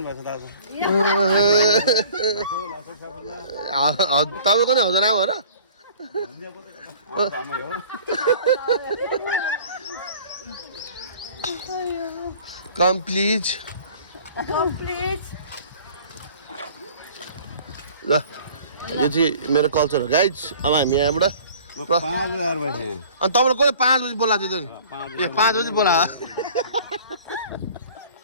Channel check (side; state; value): both; inverted; correlation -0.49